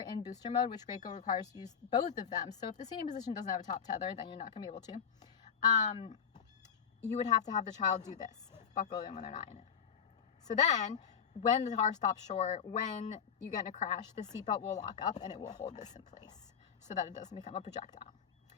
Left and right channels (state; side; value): quieter; right; 7.3 dB